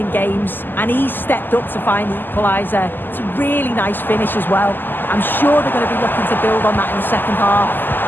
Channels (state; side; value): late; right; 0.091 ms